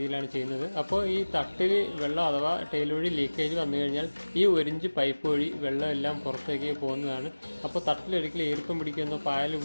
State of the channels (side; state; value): both; inverted; correlation -1.00